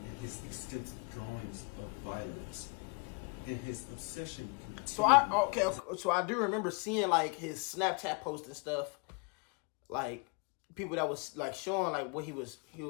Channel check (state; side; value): quieter; right; 32.2 dB